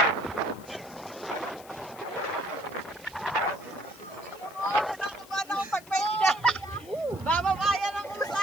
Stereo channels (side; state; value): left; noise; hiss, 21 dB below the sound